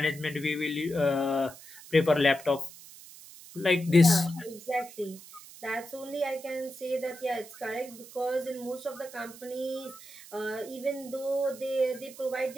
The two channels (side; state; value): right; noise; hiss, 18 dB below the sound